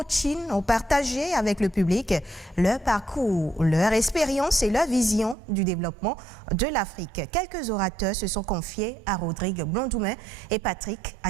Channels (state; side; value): drops out; left; at 5.4 s